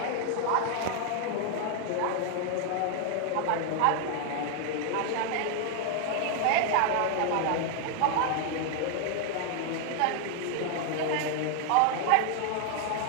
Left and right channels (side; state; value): both; different; correlation 0.00